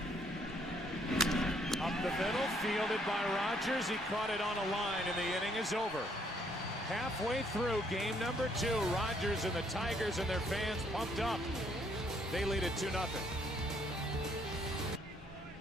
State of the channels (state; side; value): normal; both; correlation 0.68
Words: Up the middle, fielded by Rogers. He caught it on a line, and the inning is over. Halfway through game number 2, Rogers and the Tigers and their fans pumped up. They lead it 2-0.